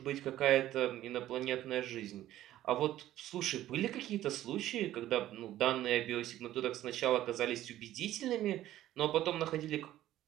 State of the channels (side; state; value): left; quieter; 13.7 dB